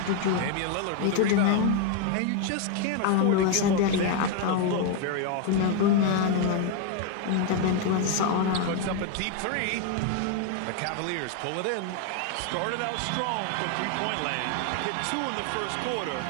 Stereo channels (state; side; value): different; both; correlation 0.01